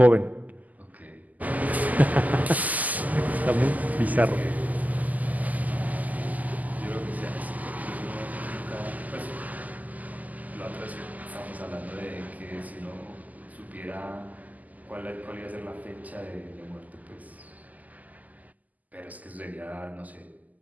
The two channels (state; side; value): late; left; 0.079 ms